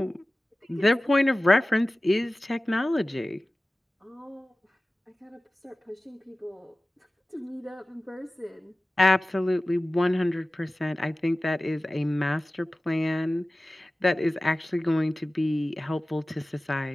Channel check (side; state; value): both; normal; correlation 0.97